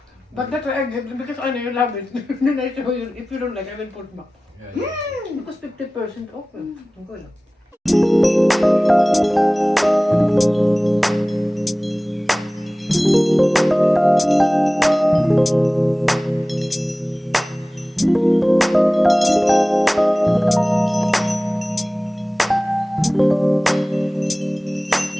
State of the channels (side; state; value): both; normal; correlation 0.97